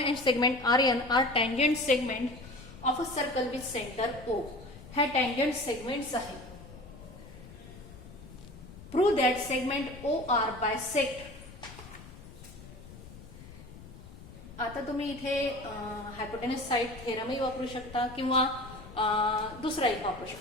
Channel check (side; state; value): left; noise; rumble, 16 dB below the sound